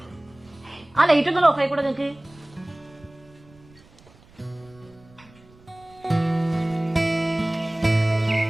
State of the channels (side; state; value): right; noise; rumble, 27 dB below the sound